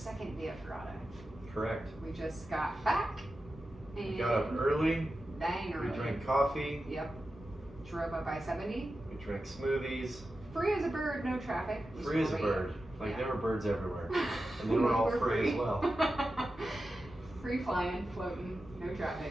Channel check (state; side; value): normal; both; correlation 0.92